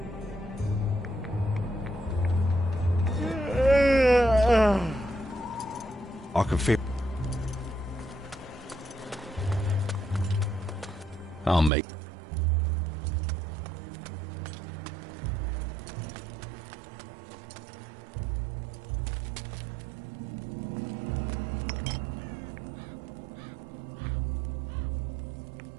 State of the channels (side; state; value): left; drops out; at 11.7 s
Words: I can feel... I'll make...